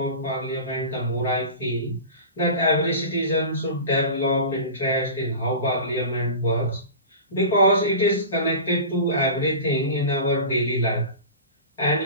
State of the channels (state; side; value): inverted; both; correlation -0.33